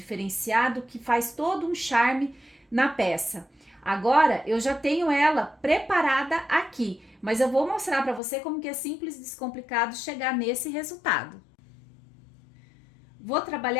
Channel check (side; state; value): right; drops out; at 8.2 s